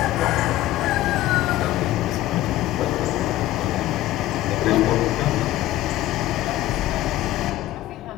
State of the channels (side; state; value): right; quieter; 15.2 dB